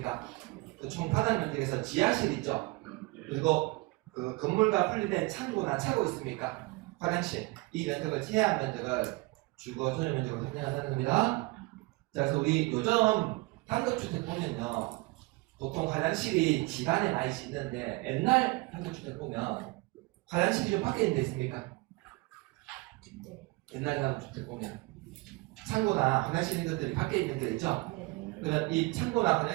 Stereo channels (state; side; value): quieter; left; 23.3 dB